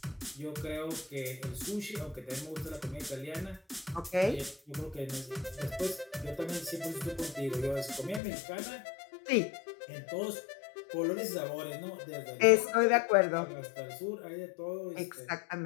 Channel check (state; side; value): drops out; right; at 8.2 s